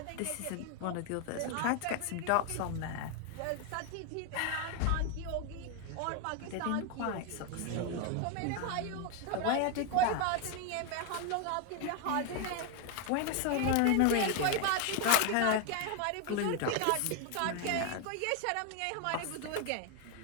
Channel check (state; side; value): different; both; correlation 0.01